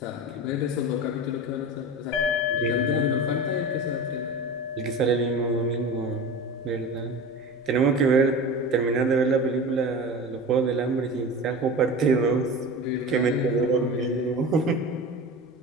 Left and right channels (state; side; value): normal; both; correlation 0.31